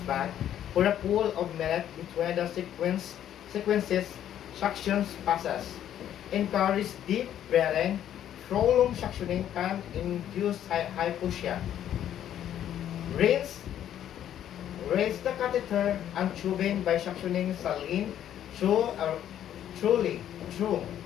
back for a pool of minute between the sequences suctions passes. Encourage deep breathing, prolonged suctioning can induce hypoxia. Rinse Raise the catheter and tubing by suctioning saline through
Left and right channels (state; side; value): quieter; right; 10.8 dB